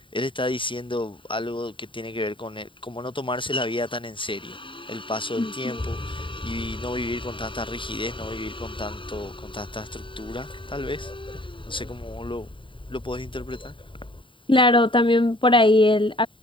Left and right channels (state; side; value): late; right; 0.25 ms